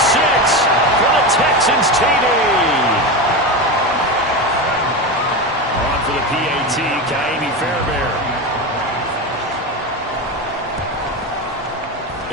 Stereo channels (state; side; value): normal; both; correlation 0.19